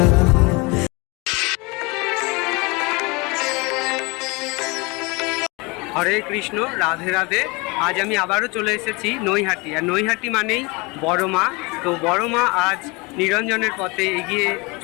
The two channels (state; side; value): quieter; right; 26.8 dB